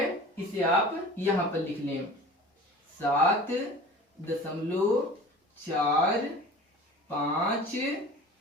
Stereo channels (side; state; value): both; normal; correlation 0.40